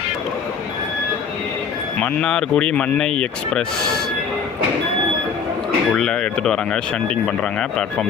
மன்னார்குடி மன்னை எக்ஸ்பிரஸ் உள்ளே எடுத்துகிட்டு வராங்க, ஷண்டிங் பண்ணுறாங்க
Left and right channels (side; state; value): right; quieter; 6.3 dB